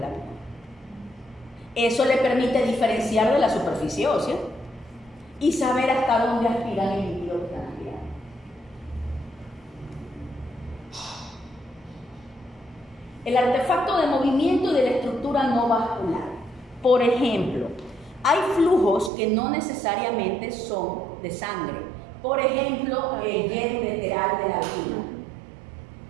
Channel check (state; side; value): drops out; left; at 19.1 s